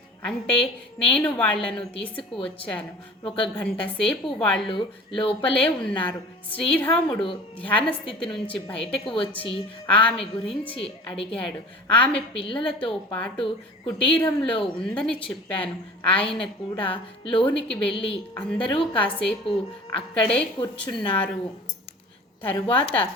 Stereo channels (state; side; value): normal; both; correlation 0.41